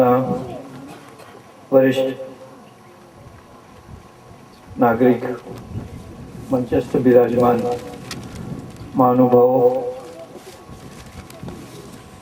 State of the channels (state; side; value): identical; both; correlation 1.00